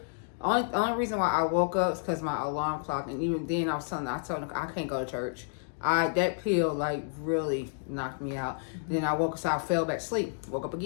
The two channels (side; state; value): right; silent; digital silence